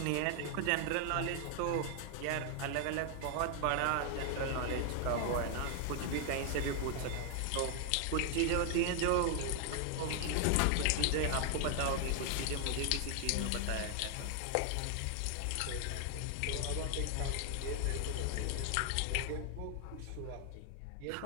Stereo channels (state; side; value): different; both; correlation 0.00